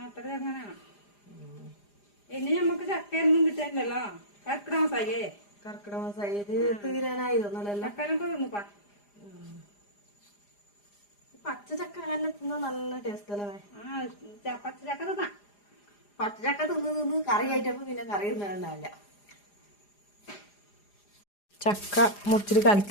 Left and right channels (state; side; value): late; right; 4.9 ms